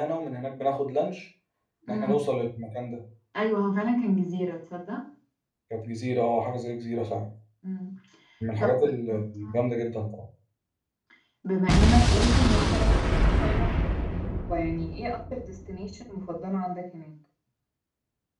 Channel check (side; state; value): both; identical; correlation 1.00